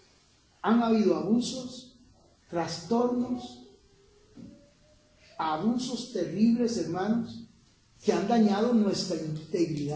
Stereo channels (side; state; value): both; identical; correlation 1.00